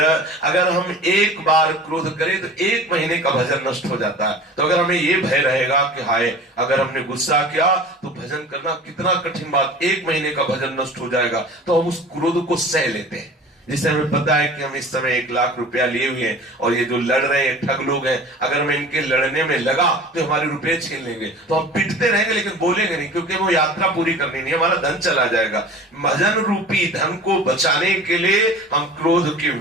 अगर हम एक बार क्रोध करें तो 1 महीने का भजन नष्ट हो जाता है। तो अगर हमें ये भय रहेगा कि हाय अगर हमने गुस्सा किया तो भजन करना कितना कठिन बात, 1 महीने का भजन नष्ट हो जाएगा, तो हम उस क्रोध को सह लेते हैं। जिससे हमें पता है कि हम इस समय 1 लाख रुपया लिए हुए हैं और ये जो लड़ रहे हैं ठग लोग हैं, अगर मैं इनके लड़ने में लगा तो हमारे रुपए छीन लेंगे, तो हम पिटते रहेंगे लेकिन बोलेंगे नहीं, क्योंकि वो यात्रा पूरी करनी नहीं, हमारा धन चला जाएगा। भजन रूपी धन को बचाने के लिए हम क्रोध के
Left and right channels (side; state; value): both; normal; correlation 0.40